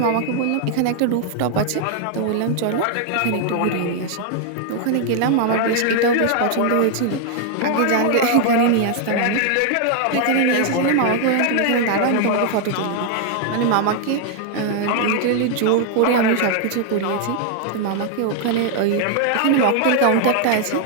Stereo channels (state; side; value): different; both; correlation 0.00